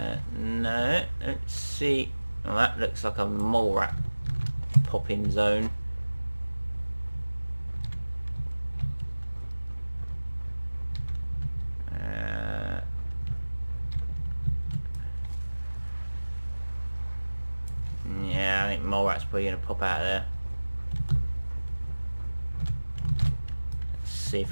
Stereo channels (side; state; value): both; inverted; correlation -1.00